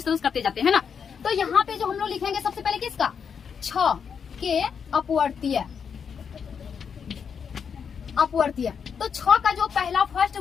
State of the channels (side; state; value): right; quieter; 6.8 dB